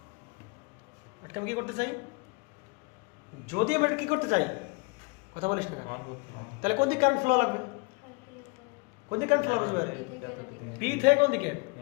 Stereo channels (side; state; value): right; quieter; 29.1 dB